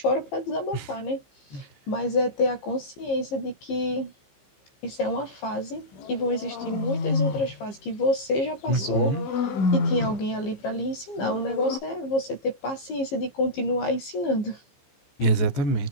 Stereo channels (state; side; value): late; right; 15 ms